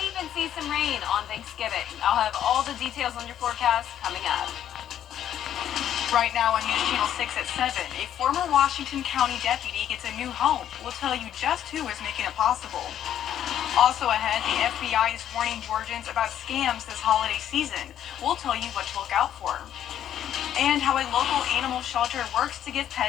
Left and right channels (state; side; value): quieter; right; 10.5 dB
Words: even see some rain on Thanksgiving. I'll have all the details on your forecast coming up. Right now on News Channel 6 at 7, a former Washington County deputy gets a new home. We'll tell you just who is making it possible. Also ahead, the FBI is warning Georgians about scams this holiday season. We'll tell you what to look out for. And how a local animal shelter works to give